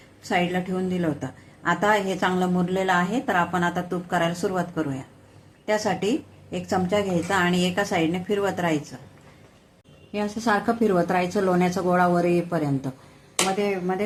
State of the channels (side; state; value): both; identical; correlation 1.00